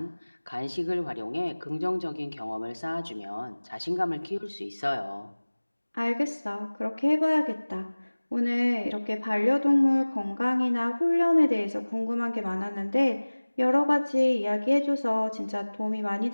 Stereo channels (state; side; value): inverted; both; correlation -1.00